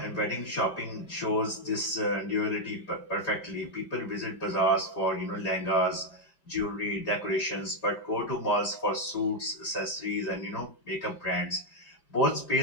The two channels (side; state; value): right; late; 5.2 ms